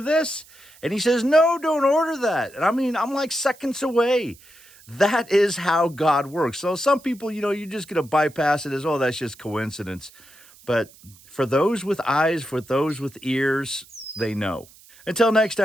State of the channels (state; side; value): noise; right; hiss, 25 dB below the sound